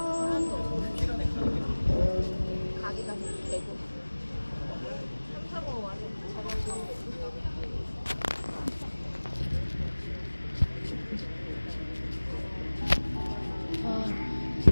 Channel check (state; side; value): inverted; both; correlation -1.00